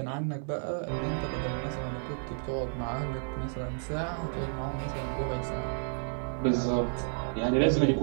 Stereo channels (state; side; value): silent; left; 57 dB below the other